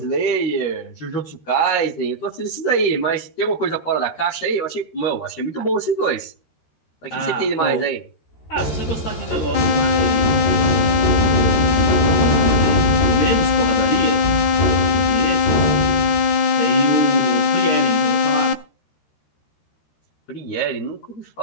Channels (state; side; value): late; right; 13 ms